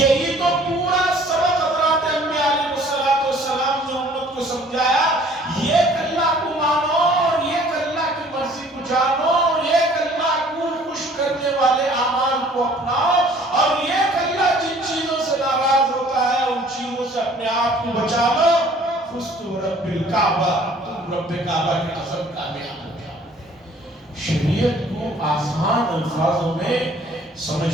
تو پورا سبق حضرات انبیاء علیہ السلام نے امت کو سمجھایا، ایک اللہ کو مانو اور ایک اللہ کی مرضی کو جانو اور ایک اللہ کو خوش کرنے والے اعمال کو اپناؤ، اور ایک اللہ جن چیزوں سے ناراض ہوتا ہے ان چیزوں سے اپنے آپ کو بچا لو۔ فزتم رب الکعبہ، تم رب کعبہ کی قسم کامیاب ہو جاؤ۔ شریعت کو آسان الفاظوں میں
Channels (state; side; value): normal; both; correlation 0.55